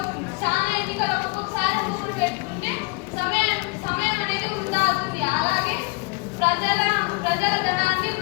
చాలా ఎన్నికలు ఒక్కొక్కసారి ఊరు పెట్టుకుంటే సమయం అనేది వృధా అవుతుంది. అలాగే ప్రజల ధనాన్ని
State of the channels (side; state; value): right; quieter; 28.3 dB